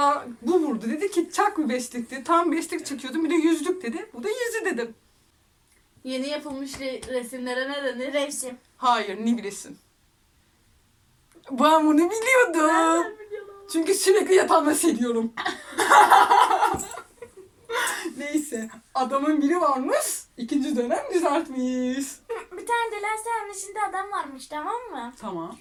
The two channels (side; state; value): both; identical; correlation 1.00